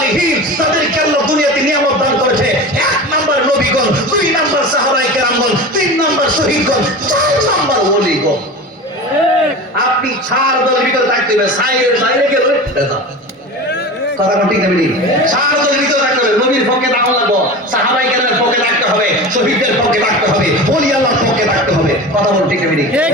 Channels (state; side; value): normal; both; correlation 0.31